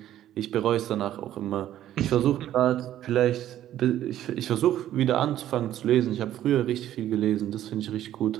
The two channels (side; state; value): left; quieter; 12.3 dB